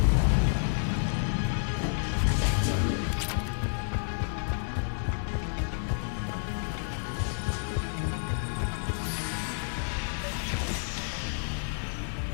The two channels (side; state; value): right; silent; digital silence